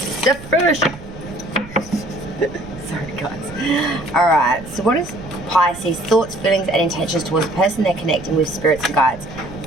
the first. Sorry guys. Alright, so what is Pisces thoughts, feelings and intentions towards the person they're connecting with, spirits and guides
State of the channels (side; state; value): right; noise; rumble, 16 dB below the sound